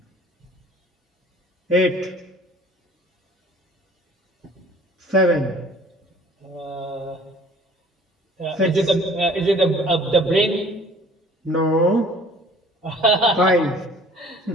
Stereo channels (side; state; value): both; normal; correlation 0.51